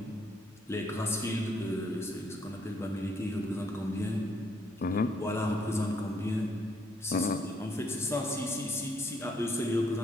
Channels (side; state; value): both; normal; correlation 0.70